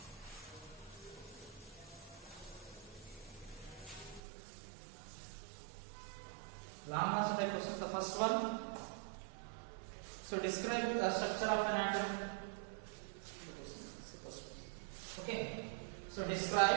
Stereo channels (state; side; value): drops out; left; at 4.2 s